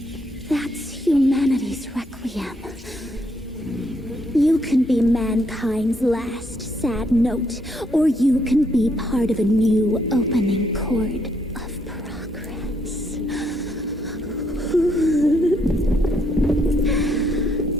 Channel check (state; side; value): normal; both; correlation 0.73